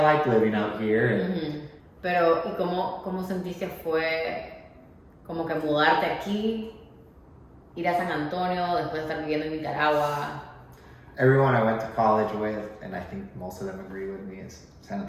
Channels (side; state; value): both; identical; correlation 1.00